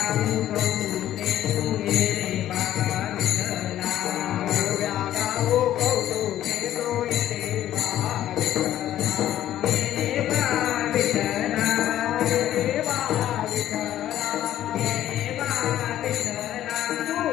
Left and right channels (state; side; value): quieter; right; 12.4 dB